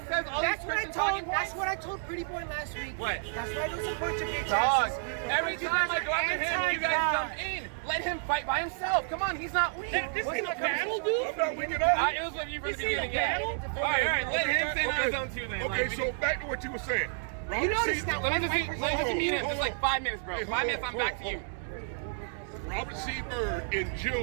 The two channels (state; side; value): silent; left; digital silence